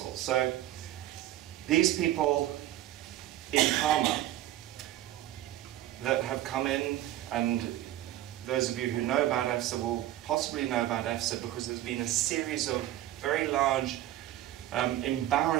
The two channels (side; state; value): left; quieter; 13.9 dB